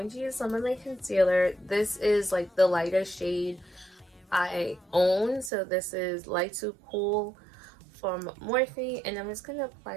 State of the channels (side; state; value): left; drops out; at 5.5 s